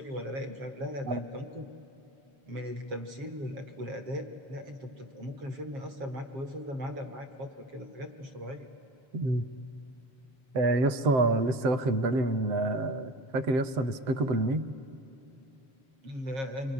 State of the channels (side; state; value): left; late; 7.7 ms